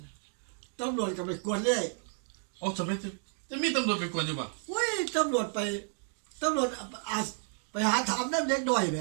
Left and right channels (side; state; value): left; silent; 57 dB below the other